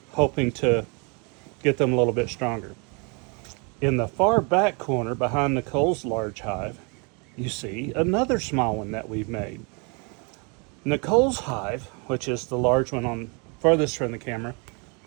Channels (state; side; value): quieter; left; 33.2 dB